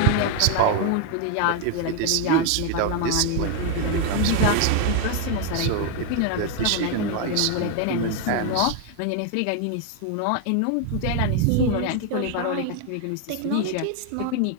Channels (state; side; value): different; both; correlation 0.01